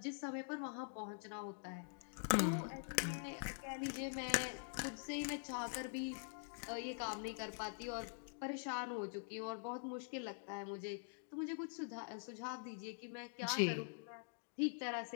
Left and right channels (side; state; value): right; silent; digital silence